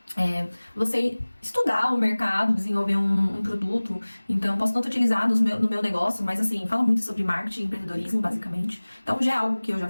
você estudar o mercado, desenvolver um produto. Então eu posso tanto utilizar no meu negócio, mas assim, fala muito sobre marketing e empreendedorismo, basicamente. Então já é algo que eu já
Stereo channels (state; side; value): inverted; both; correlation -1.00